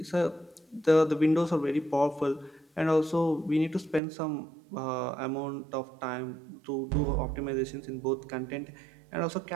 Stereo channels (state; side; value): drops out; left; at 4.0 s